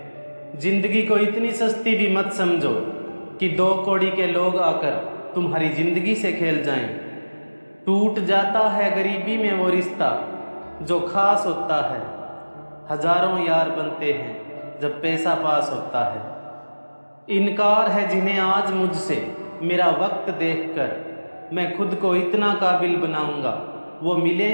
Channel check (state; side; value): inverted; both; correlation -1.00